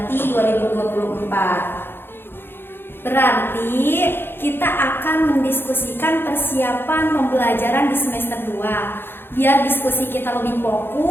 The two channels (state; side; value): late; right; 0.10 ms